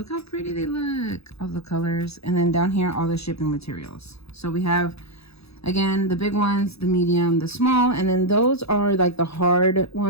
how pretty they look. All the colors. And then down here, all the shipping materials. So we have, again, the big ones, the medium, the small. And then those are like the hard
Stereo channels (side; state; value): right; late; 0.78 ms